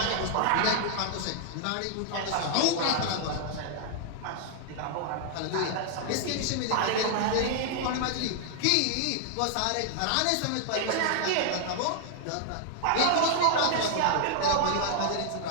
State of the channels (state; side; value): different; both; correlation -0.01